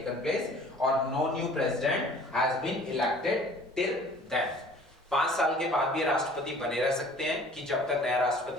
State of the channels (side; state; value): both; normal; correlation 0.50